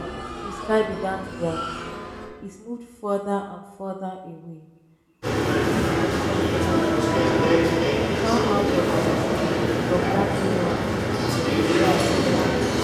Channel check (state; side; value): identical; both; correlation 1.00